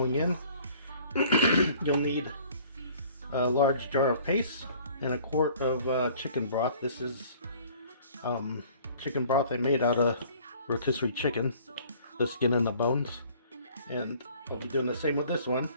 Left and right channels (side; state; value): both; inverted; correlation -0.53